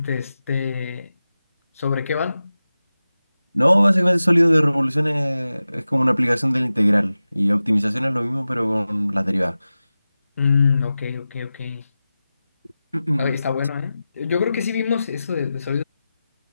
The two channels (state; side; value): inverted; both; correlation -0.94